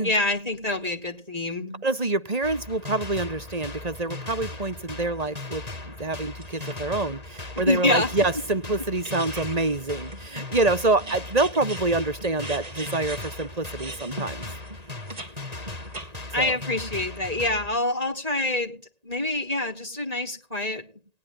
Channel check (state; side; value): late; left; 1.8 ms